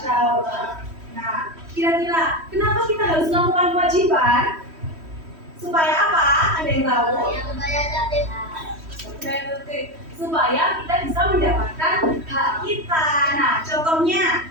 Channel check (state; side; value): late; left; 3.1 ms